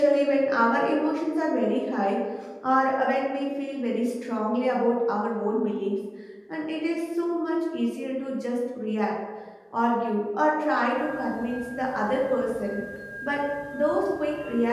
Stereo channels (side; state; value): both; identical; correlation 1.00